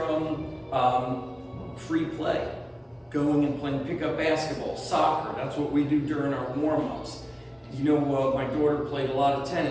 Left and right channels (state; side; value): identical; both; correlation 1.00